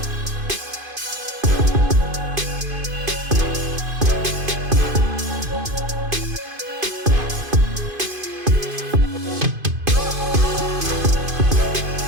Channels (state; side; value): late; left; 2.5 ms